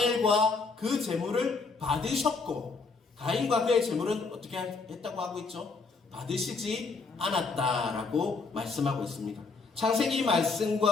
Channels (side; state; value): right; quieter; 4.3 dB